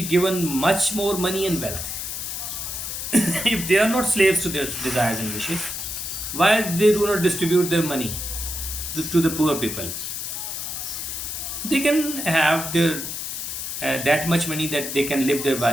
given much more money and wealth. If they are not slaves to their desires and wishes, why they do not distribute their money to the poor people? They can have their that much money that they can live their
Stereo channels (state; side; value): noise; left; hiss, 5 dB below the sound